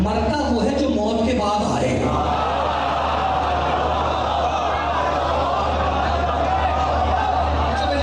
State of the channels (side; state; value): both; identical; correlation 1.00